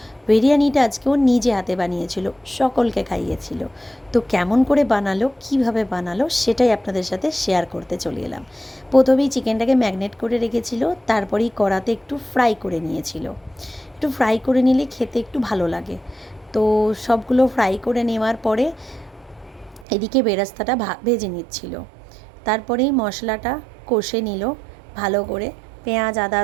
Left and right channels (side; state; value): left; drops out; at 19.9 s